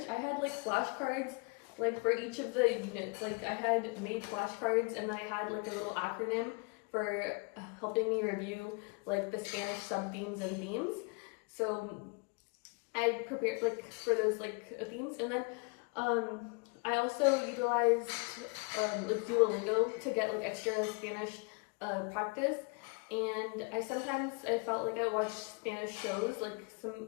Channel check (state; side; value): quieter; right; 32.4 dB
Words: I had like flashcards like for each of the units. Like I had made flashcards, and then I had like a little acronym for helping me review like the Spanish sub-themes and themes. So I prepared like for those like themes, and then I also utilized like Duolingo to get like extra Spanish practice. And I felt like I watched Spanish shows,